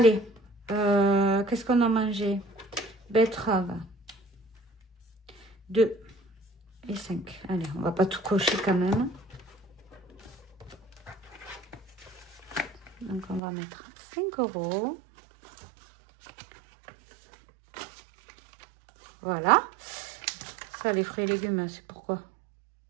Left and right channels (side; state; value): left; drops out; at 13.4 s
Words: qu'est-ce qu'on a mangé? Betterave. 2 et 5. Allez, on va pas tout cocher quand même. Donc, on va mettre 5 €. Voilà. Ça, les fruits et légumes, c'est pourquoi?